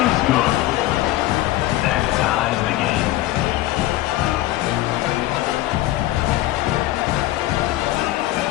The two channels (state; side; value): quieter; right; 16.1 dB